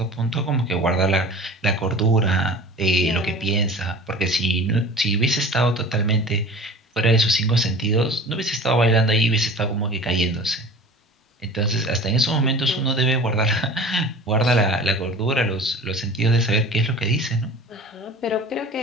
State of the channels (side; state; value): both; normal; correlation 0.40